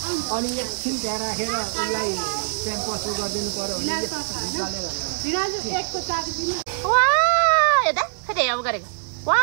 अनि एकछिन त्यहाँ राखेर उसलाई क्याम्पस गरिदिनु पर्यो भने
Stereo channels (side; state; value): left; silent; digital silence